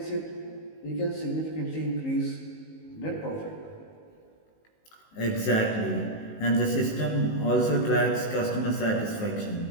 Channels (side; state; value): right; late; 19 ms